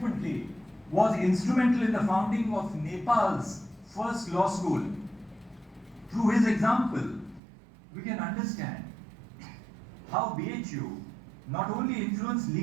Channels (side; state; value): left; drops out; at 7.4 s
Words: was instrumental in the founding of Nepal's first law school. Through his example, we can understand how BHU not only influenced